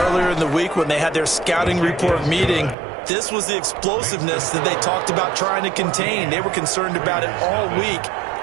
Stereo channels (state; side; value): drops out; left; at 2.8 s